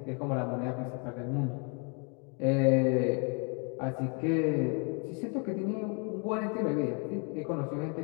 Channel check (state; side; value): quieter; right; 36.9 dB